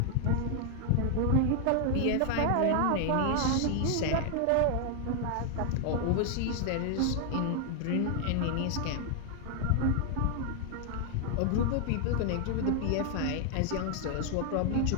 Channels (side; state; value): both; different; correlation 0.00